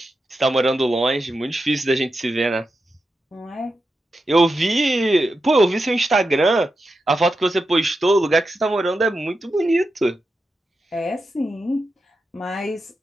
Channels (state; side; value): normal; both; correlation 0.89